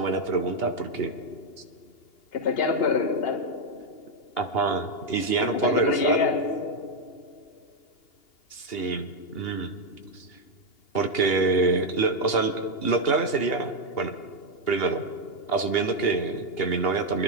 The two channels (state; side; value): late; right; 2.8 ms